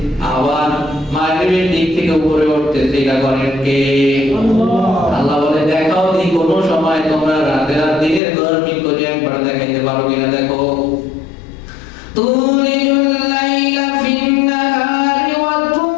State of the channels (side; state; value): right; drops out; at 8.2 s